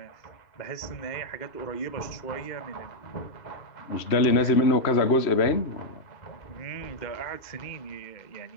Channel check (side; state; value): right; late; 3.1 ms